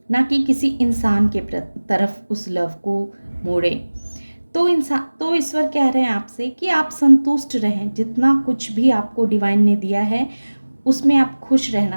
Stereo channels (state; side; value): inverted; both; correlation -1.00